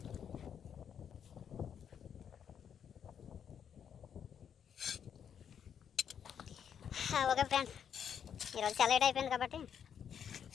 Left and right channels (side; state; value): right; quieter; 8.2 dB